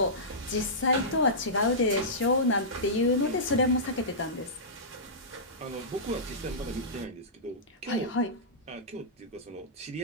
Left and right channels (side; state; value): both; normal; correlation -0.16